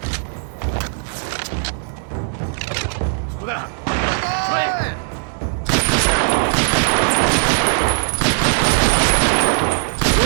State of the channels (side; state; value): left; silent; 58 dB below the other